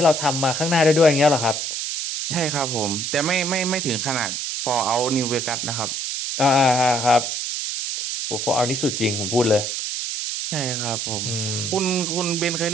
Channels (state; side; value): noise; right; hiss, 3 dB below the sound